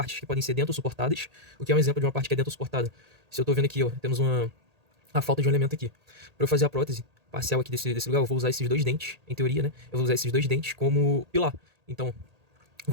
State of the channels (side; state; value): left; late; 1.8 ms